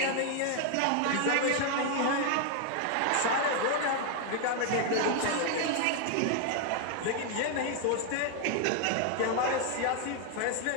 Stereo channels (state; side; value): different; both; correlation 0.00